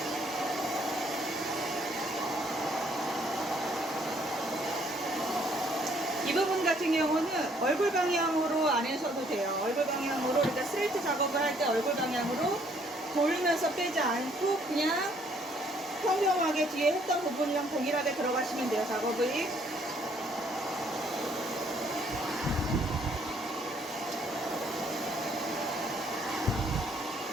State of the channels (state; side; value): normal; both; correlation 0.65